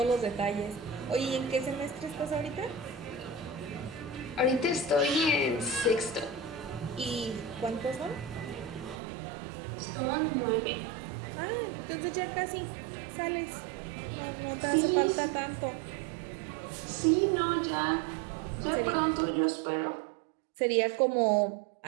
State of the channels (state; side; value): drops out; left; at 9.0 s